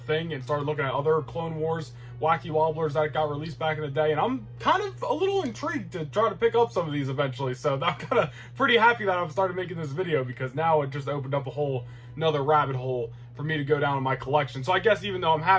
and started looking at other Clone Wars wacky wobblers that got released back in the day, and I'm kind of a little intrigued to try to pick up some of these eventually. So I'm kind of pretty happy that I've started making this video, because now it just opened up a whole another rabbit hole for me to go down in my collection. So I guess even though I'm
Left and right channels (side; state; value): both; identical; correlation 1.00